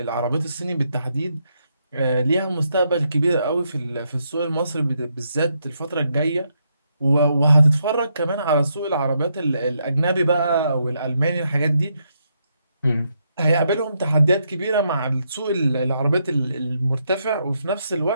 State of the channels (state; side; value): inverted; both; correlation -0.78